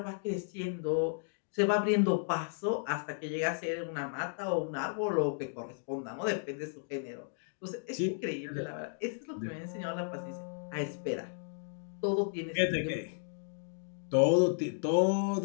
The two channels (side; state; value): right; silent; digital silence